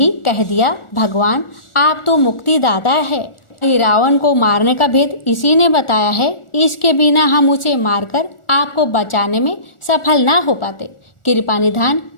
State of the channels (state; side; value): late; right; 1.4 ms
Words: कह दिया, भगवान आप तो मुक्तिदाता है। रावण को मारने का भेद इसी ने बताया है। इसके बिना हम उसे मारकर आपको बचाने में सफल ना हो पाते। कृपा निधान